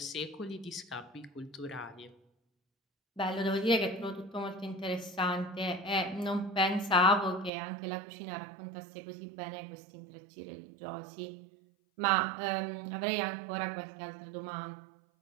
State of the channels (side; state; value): left; drops out; at 7.5 s